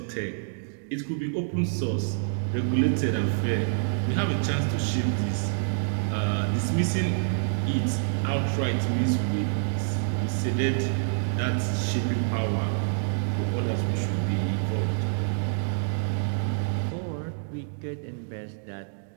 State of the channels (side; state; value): left; silent; digital silence